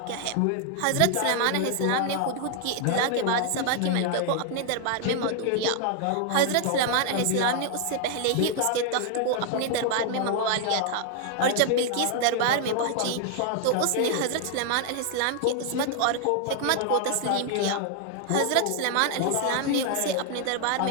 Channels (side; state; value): both; different; correlation 0.00